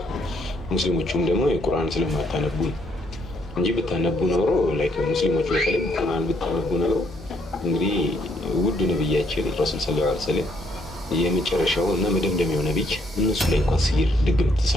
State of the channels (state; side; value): normal; both; correlation 0.70